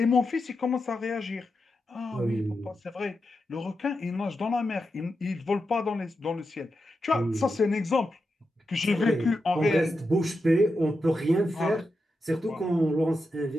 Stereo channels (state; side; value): normal; both; correlation 0.88